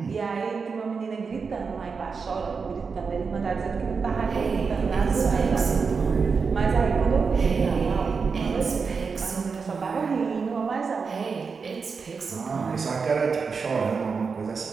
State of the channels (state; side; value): quieter; left; 5.2 dB